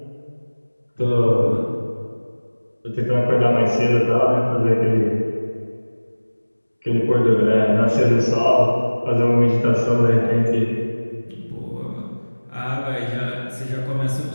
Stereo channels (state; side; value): inverted; both; correlation -1.00